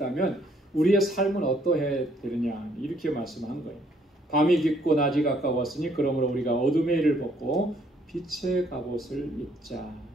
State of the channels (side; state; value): both; normal; correlation 0.66